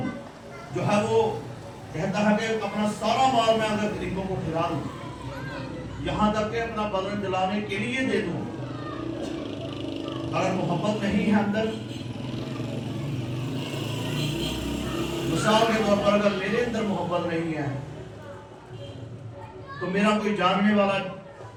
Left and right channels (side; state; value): both; identical; correlation 1.00